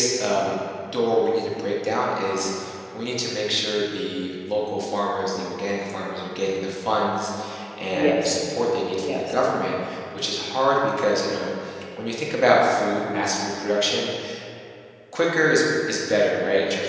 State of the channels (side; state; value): both; identical; correlation 1.00